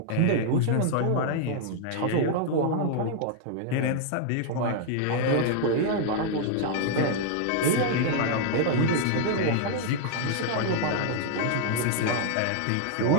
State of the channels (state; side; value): different; both; correlation 0.00